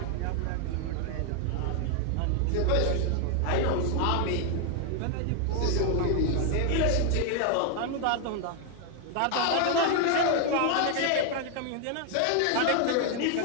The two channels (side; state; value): both; different; correlation 0.00